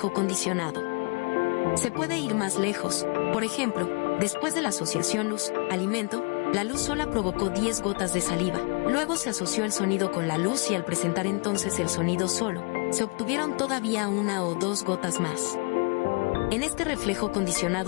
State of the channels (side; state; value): right; quieter; 32.7 dB